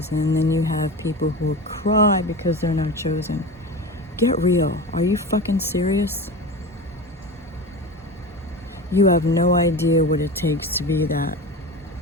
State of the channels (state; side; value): normal; both; correlation 0.28